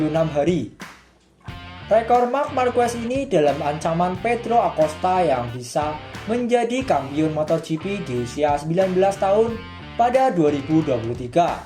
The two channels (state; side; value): identical; both; correlation 1.00